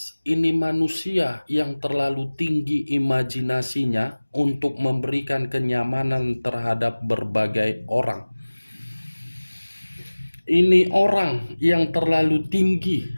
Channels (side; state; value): both; inverted; correlation -1.00